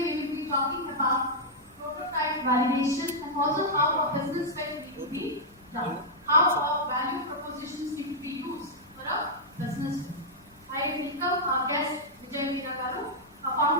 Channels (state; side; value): normal; both; correlation -0.07